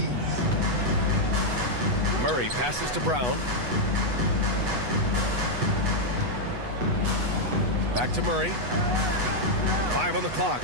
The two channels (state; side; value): late; left; 8.1 ms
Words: Murray passes to Brown. Back to Murray. 5 on the clock.